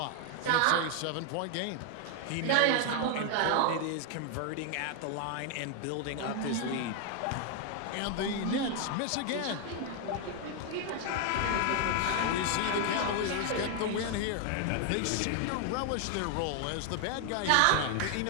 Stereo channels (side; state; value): both; different; correlation 0.00